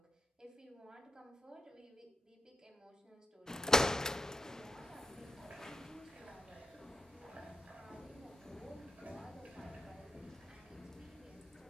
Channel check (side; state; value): both; normal; correlation 0.87